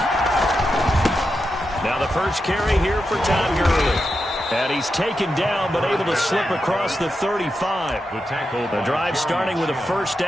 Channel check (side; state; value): both; normal; correlation 0.88